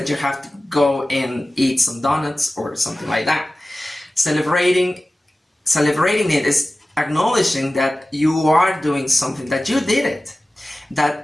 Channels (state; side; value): normal; both; correlation 0.96